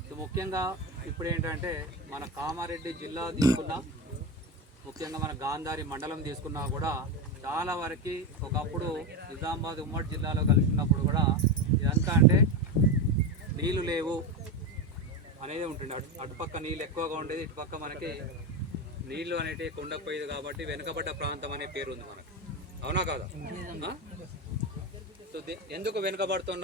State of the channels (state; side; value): normal; both; correlation 0.16